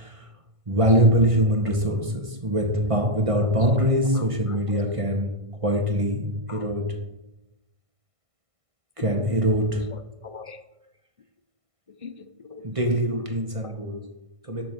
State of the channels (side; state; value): left; late; 1.5 ms